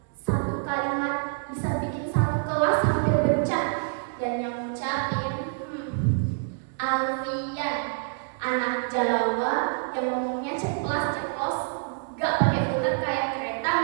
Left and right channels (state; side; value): silent; left; 60 dB below the other